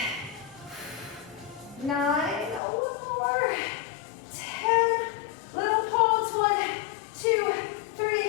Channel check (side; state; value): right; drops out; at 2.6 s